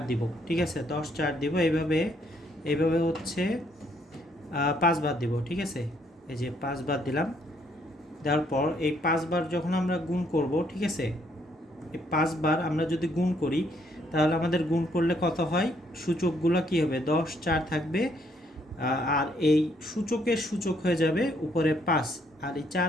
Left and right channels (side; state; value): both; normal; correlation 0.70